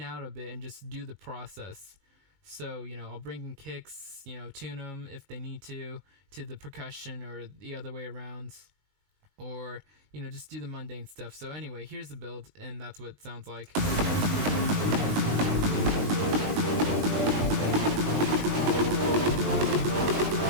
out a bit and just do the process. So, I'll bring in kicks, tune them if they need to the percussion or the other way around. Or, just do the mundane stuff. So anyway, here's the build, and that's what it sounds like.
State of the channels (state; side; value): late; left; 20 ms